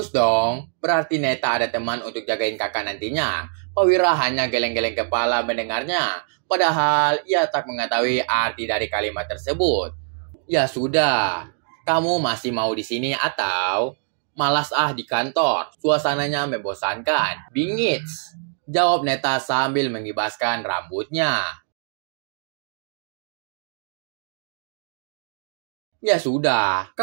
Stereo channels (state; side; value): silent; left; digital silence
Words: dong, berarti Neta ada teman untuk jagain kakak nantinya. Pak Wira hanya geleng-geleng kepala mendengarnya. Padahal ia tak mengetahui arti dari kalimat tersebut. Ya sudah, kamu masih mau di sini atau malas di kantor? Suasananya membosankan. Bingits, jawab Neta sambil mengibaskan rambutnya. Ya sudah,